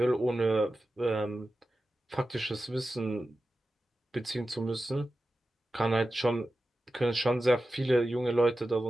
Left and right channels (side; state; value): both; normal; correlation 0.93